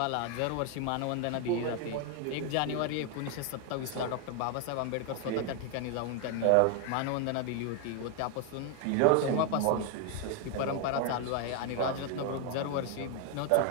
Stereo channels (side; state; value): both; different; correlation 0.01